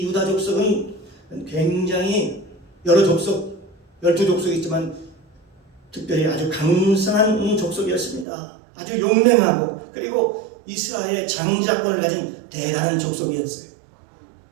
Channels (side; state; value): left; drops out; at 8.2 s